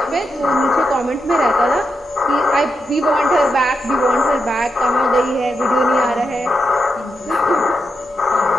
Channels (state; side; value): normal; both; correlation 0.85